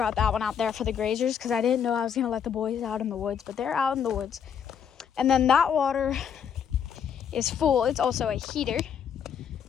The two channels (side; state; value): right; quieter; 7.9 dB